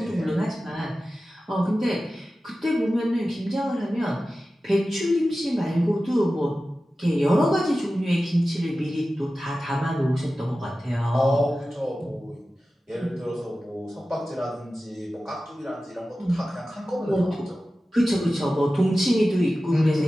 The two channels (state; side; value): normal; both; correlation 0.95